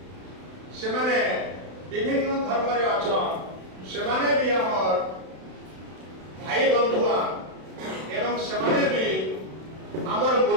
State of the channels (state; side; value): late; left; 32 ms